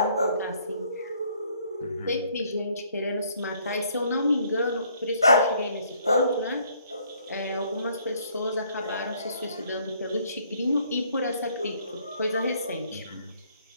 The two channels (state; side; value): inverted; both; correlation -0.64